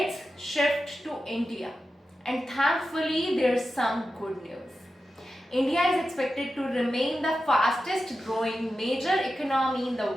shift to India, and thankfully there's some good news. India is expected to remain the fastest growing major economy in the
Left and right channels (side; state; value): both; normal; correlation 0.91